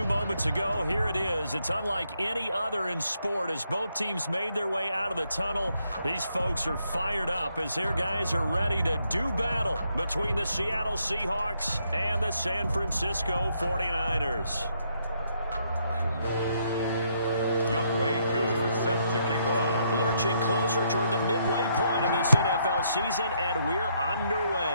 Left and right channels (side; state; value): both; inverted; correlation -0.74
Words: moments ago, here it is. It's unlike any other in sport as both teams made their way out of the tunnel. These folks are fired up as their guys are ready to do battle between the Seattle Seahawks and the San Francisco 49ers. Set to kick off. Lurching closer toward the midway point of this NFL season, and we're